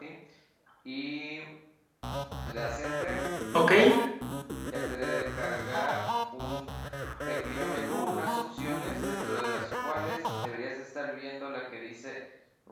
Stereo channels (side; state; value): both; identical; correlation 1.00